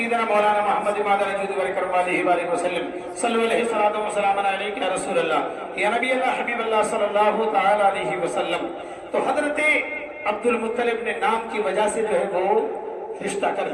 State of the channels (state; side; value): identical; both; correlation 1.00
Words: مولانا محمد امام الوجود والکرم علیہ وآلہ وسلم، صلو علیہ الصلاۃ والسلام علیک یا رسول اللہ، یا نبی اللہ، حبیب اللہ صلی اللہ تعالی علیہ وسلم۔ تو حضرت عبد المطلب نے نام کی وجہ سے جو ہے وہ رشتہ کر